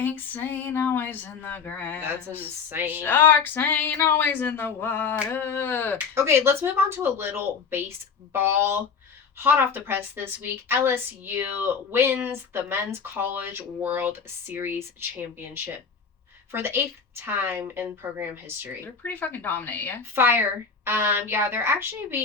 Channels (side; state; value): right; quieter; 5.7 dB